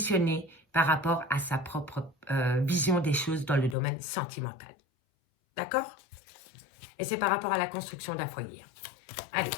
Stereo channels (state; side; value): drops out; right; at 3.8 s